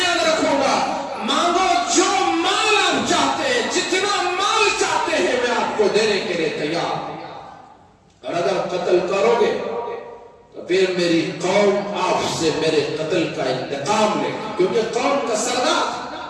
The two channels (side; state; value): both; identical; correlation 1.00